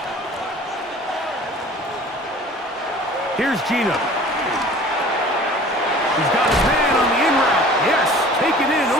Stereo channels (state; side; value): normal; both; correlation 0.46